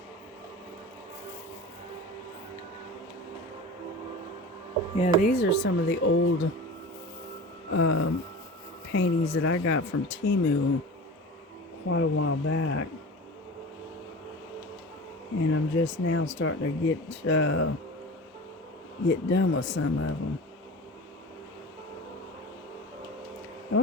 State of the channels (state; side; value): normal; both; correlation 0.35